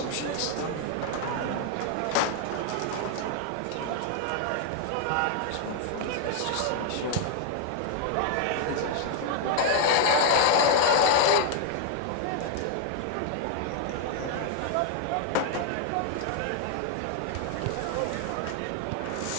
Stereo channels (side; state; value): both; different; correlation 0.00